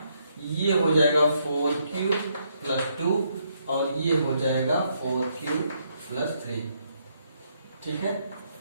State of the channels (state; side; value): inverted; both; correlation -0.74